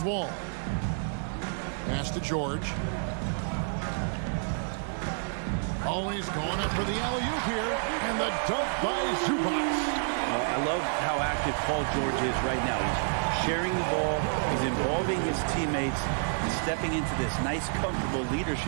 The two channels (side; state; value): left; silent; digital silence